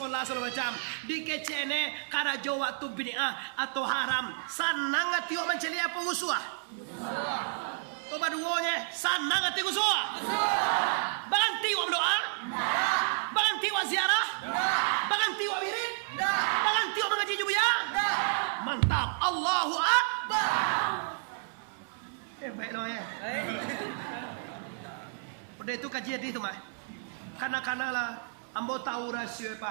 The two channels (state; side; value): silent; left; 57 dB below the other